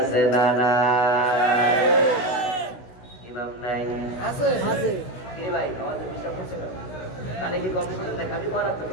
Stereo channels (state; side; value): late; right; 16 ms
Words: না? না, ইমাম নাই? আছে, আছে। এই ভাই আমাদের বিশ্বাস করছে না, কানে কি কথা শুনতে খালি পড়াতে